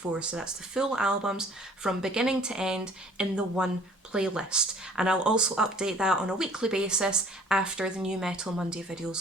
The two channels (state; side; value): normal; both; correlation 0.54